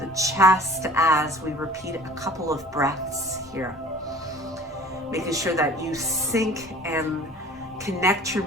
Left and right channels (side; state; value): both; normal; correlation 0.46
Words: chest as we repeat a couple of breaths here. Making sure that you sync and connect your